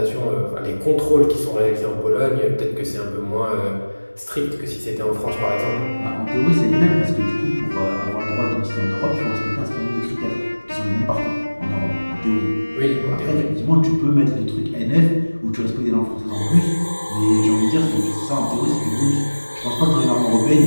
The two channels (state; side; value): inverted; both; correlation -1.00